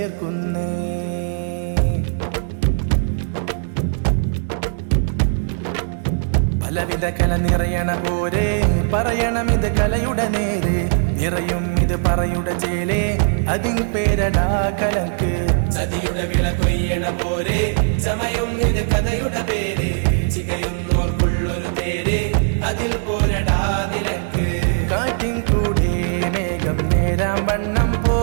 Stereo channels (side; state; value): left; silent; digital silence